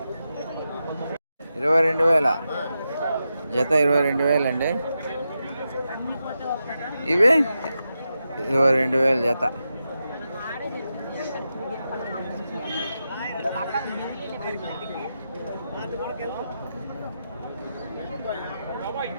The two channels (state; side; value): inverted; both; correlation -0.88